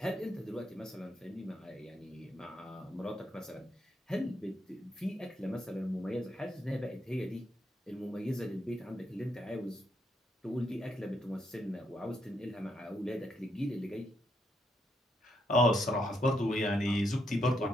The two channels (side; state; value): both; normal; correlation 0.78